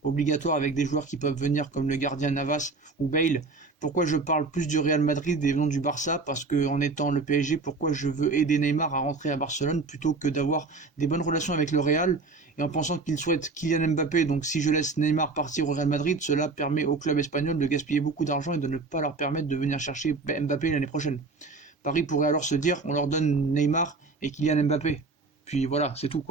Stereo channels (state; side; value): quieter; left; 3.8 dB